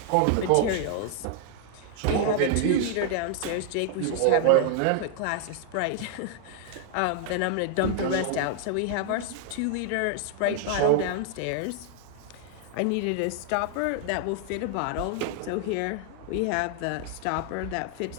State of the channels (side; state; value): both; different; correlation 0.00